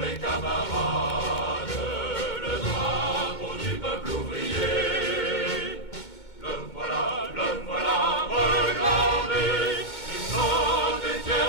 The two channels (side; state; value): right; late; 2.2 ms